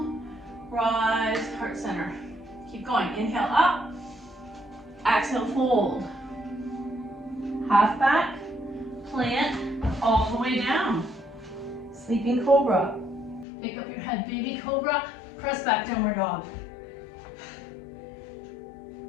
rise, heart center. Keep going. Inhale up, exhale, fold. Half back, plant, all the way down. Sleeping cobra. Pick up your head, baby cobra. Press back, downward dog.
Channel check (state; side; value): drops out; right; at 13.5 s